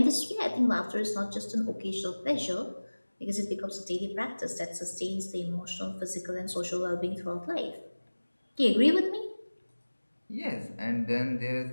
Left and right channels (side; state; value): both; inverted; correlation -1.00